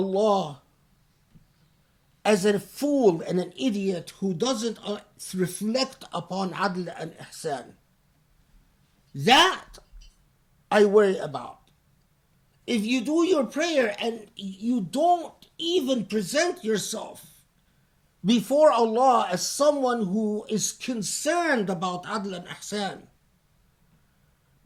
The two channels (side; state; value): both; identical; correlation 1.00